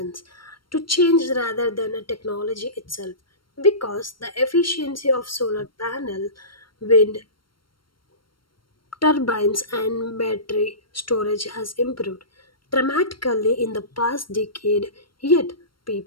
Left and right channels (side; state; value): right; late; 0.73 ms